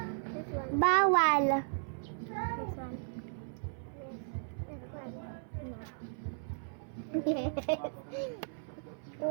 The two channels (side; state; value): left; silent; 54 dB below the other